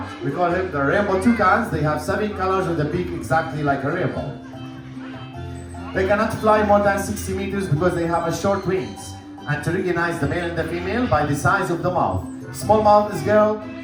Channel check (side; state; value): both; identical; correlation 1.00